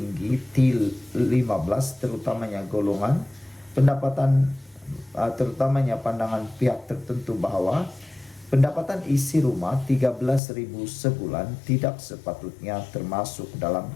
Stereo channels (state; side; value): drops out; right; at 10.4 s